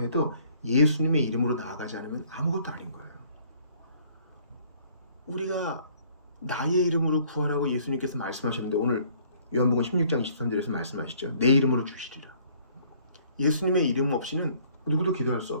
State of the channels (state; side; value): inverted; both; correlation -0.59